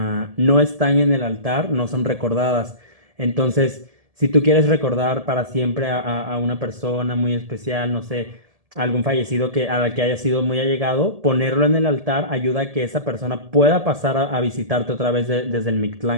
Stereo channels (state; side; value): late; left; 1.7 ms